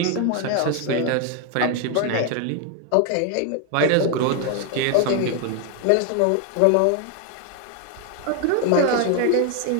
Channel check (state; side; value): different; both; correlation 0.01